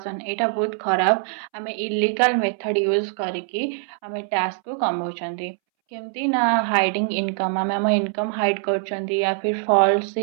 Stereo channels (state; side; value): silent; left; 63 dB below the other